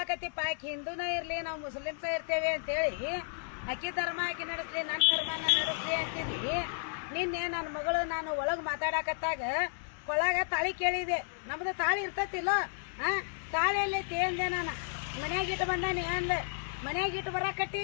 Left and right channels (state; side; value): silent; right; 56 dB below the other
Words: ಆಕಿ ಹಿಂದೂನ ಇರ್ಲಿ ನಾವು ಮುಸ್ಲಿಮ್ಸ ಇರ್ತೇವೆ ಅಂತೇಳಿ ಅಕ್ಕಿ ಧರ್ಮ ಆಕಿ ನಡೆಸ್ಲಿ ನನ್ನ ಧರ್ಮ ನಾನು ನಡೆಸ್ಲಿ ಅಂತಿದ್ವಿ. ನಿನ್ನೆ ನನ್ನ ಮಗಳು ನಾನು ಒಳಗ್ ಮಾತಾಡಕತ್ತಾಗ ಕೊಳಗ ತಾಳಿ ಕೇಳಿದೆ. ನಮ್ದು ತಾಳಿ ಇರ್ತತಿಲ್ಲ, ತಾಳಿ ಎಲ್ಲೈತಿ ಅಂದೆ. ನಾನು ಮನ್ಯಾಗ ಇಟ್ಟು ಬಂದಾನೆ ಅಂದೆ. ಮನ್ಯಾಗ ಇಟ್ಟು